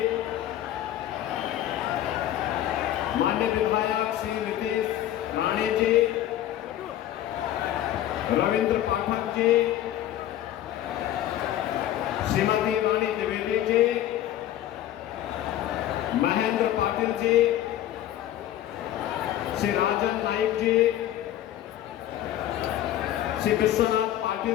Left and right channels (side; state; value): right; quieter; 12.5 dB